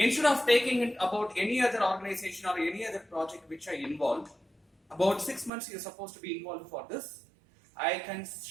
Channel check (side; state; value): left; drops out; at 5.5 s